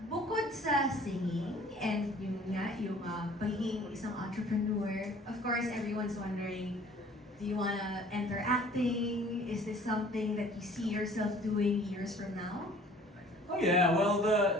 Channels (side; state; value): both; normal; correlation 0.51